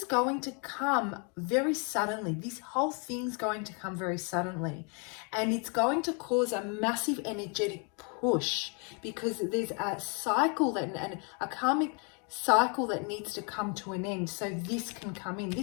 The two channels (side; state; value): right; quieter; 36.0 dB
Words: going to come very suddenly. This whole thing's going to come very suddenly. And it's going to cause a massive energetic push, because there's a cycle and a karmic cycle that needs to come to an end, so this can come in.